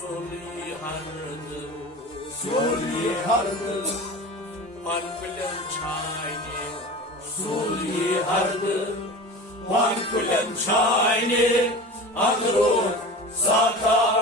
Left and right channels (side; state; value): both; normal; correlation 0.34